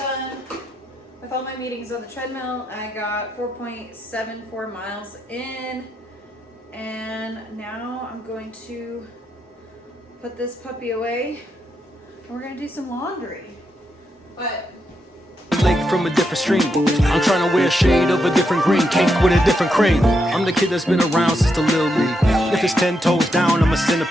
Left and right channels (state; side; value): normal; both; correlation 0.82